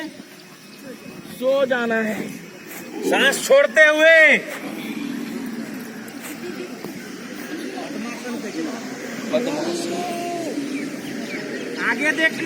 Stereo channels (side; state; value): both; identical; correlation 1.00